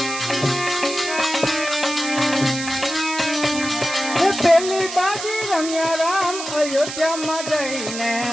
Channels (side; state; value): right; noise; hiss, 8 dB below the sound